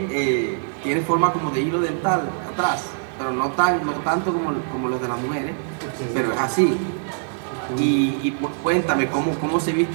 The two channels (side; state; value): left; silent; digital silence